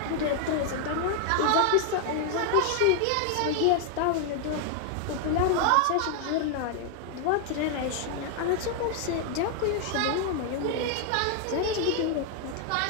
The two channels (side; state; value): both; different; correlation 0.00